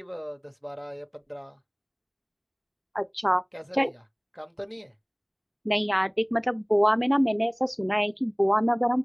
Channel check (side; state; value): both; identical; correlation 1.00